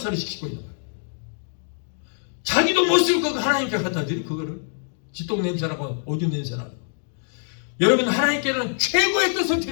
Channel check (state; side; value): silent; right; digital silence